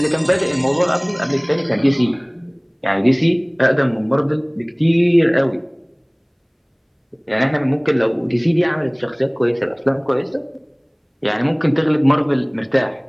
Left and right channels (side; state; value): both; identical; correlation 1.00